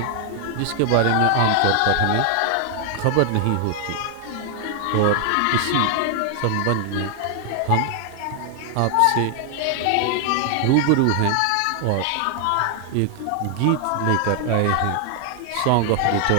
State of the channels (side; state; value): both; different; correlation 0.00